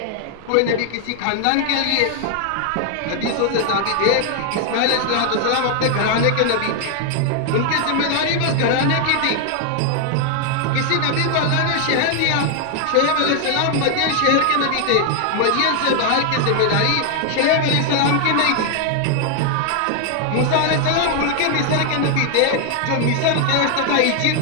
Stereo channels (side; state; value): both; different; correlation 0.00